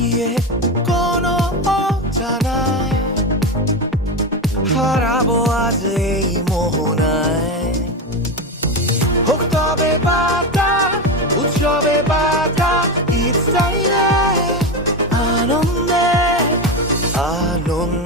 কোনো অজানায়, হারাবো আজ এই মোহনায়। হোক তবে বাতা উৎসবে বাতা ইচ্ছাইলে আনন্দে,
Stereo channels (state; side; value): normal; both; correlation 0.16